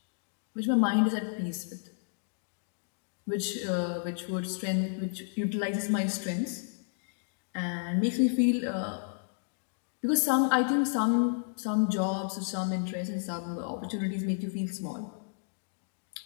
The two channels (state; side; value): silent; right; digital silence